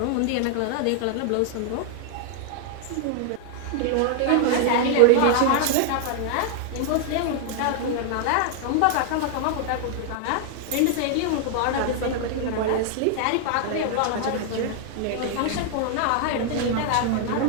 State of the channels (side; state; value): both; different; correlation 0.00